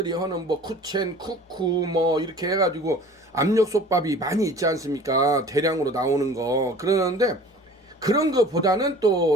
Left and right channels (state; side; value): normal; both; correlation 0.45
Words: 하는 뭐 쿠첸, 쿠쿠 뭐 이렇게 해가지고 압력솥밥이 많이 있지 않습니까? 대량으로 나오는 거. 그러는데 그런 거보다는